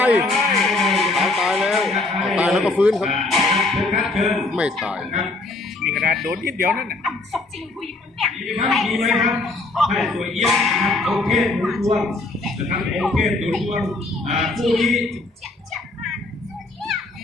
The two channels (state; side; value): quieter; right; 3.2 dB